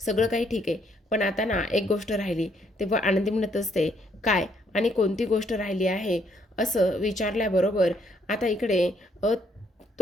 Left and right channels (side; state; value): both; normal; correlation 0.70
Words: सगळं काही ठीक आहे, पण आता ना एक गोष्ट राहिली. तेव्हा आनंदी म्हणत असते, काय आणि कोणती गोष्ट राहिली आहे? असं विचारल्याबरोबर आता इकडे